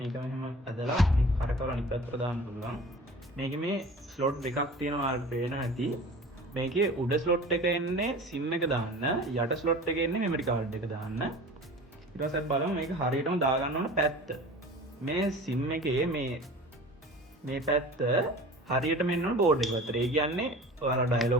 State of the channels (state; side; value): normal; both; correlation 0.40